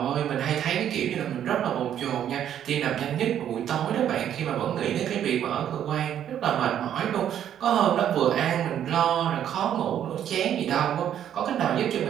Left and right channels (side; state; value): left; quieter; 10.1 dB